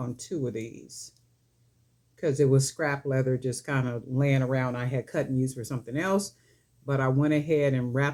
2 of these, because it was scrap leather just kind of laying around. I had cut and used for something else, but I went ahead and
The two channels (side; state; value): both; identical; correlation 1.00